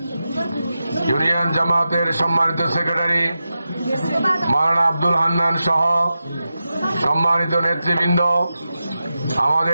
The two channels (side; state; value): both; inverted; correlation -0.91